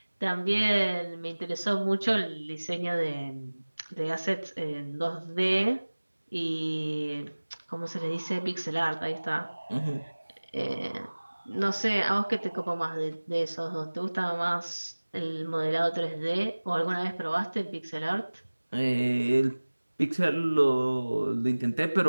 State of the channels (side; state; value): both; inverted; correlation -1.00